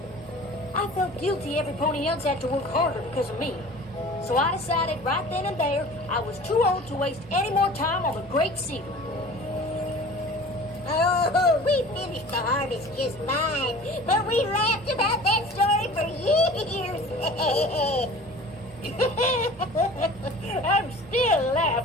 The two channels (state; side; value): normal; both; correlation 0.42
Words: I felt guilty every pony else had to work harder because of me. So I decided right then and there I was too old to waste any more time on the great seedling. Oh, we finished the harvest just fine, but we laughed about that story for years. I'm still